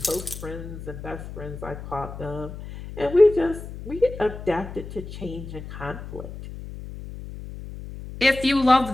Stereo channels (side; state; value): left; noise; hum, 11 dB below the sound